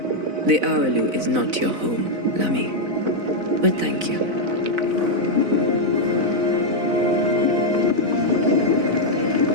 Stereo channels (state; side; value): late; left; 4.0 ms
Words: Araloo is not your home, Lamy. But thank you.